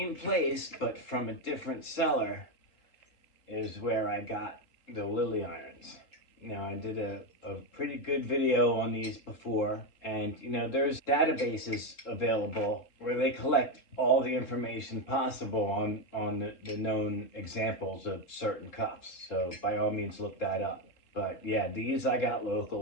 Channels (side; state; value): right; late; 3.8 ms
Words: place but from a different seller is where I got the Lily Irons. Now, I did a pretty good video on these before, and you know, there's databases available where they collect all the information possible on the known examples of certain cuffs. So by all means, look that up. But yeah, these I got